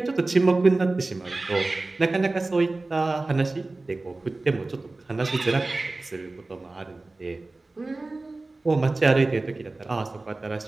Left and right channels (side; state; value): left; quieter; 3.2 dB